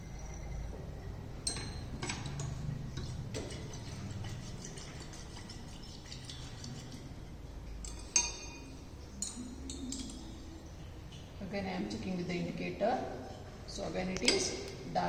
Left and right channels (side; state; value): both; identical; correlation 1.00